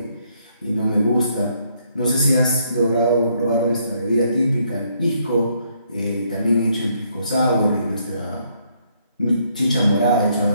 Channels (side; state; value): both; inverted; correlation -0.71